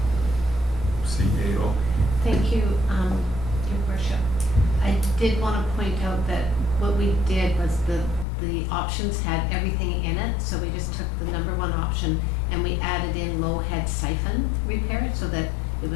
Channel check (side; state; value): right; drops out; at 8.2 s